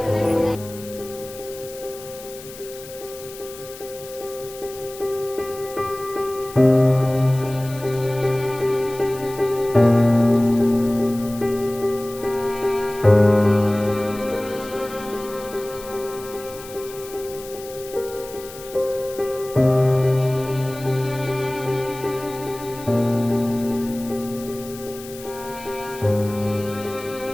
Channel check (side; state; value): left; noise; hiss, 16 dB below the sound